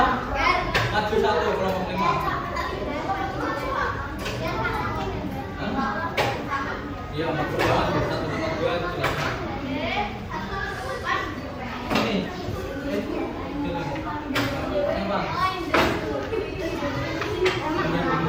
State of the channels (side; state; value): both; identical; correlation 1.00